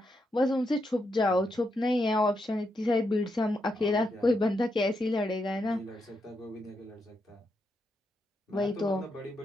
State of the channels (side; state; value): both; normal; correlation 0.83